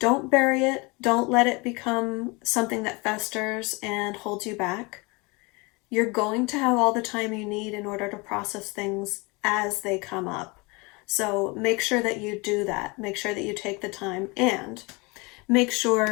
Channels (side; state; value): right; quieter; 27.2 dB